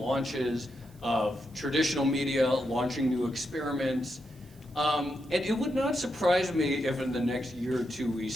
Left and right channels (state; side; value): noise; right; hiss, 29 dB below the sound